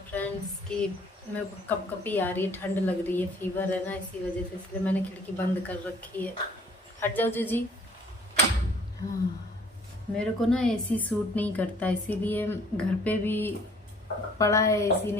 फ्रेंड्स, कि मेरे को कपकपी आ रही है, ठंड लग रही है, फीवर है ना, इसी वजह से, इसलिए मैंने खिड़की बंद कर रखी है। हट जाओ जीजी। हाँ, मेरे को ना एसी सूट नहीं करता, इसीलिए घर पे भी पड़ा है एसी,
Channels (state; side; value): normal; both; correlation 0.57